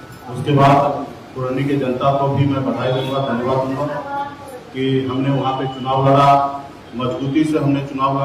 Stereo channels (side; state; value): both; identical; correlation 1.00